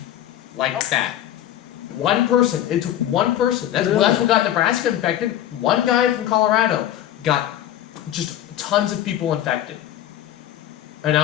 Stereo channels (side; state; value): right; quieter; 12.0 dB